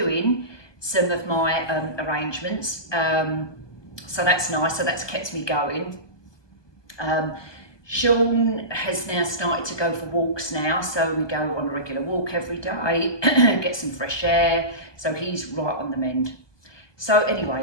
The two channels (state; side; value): late; right; 1.2 ms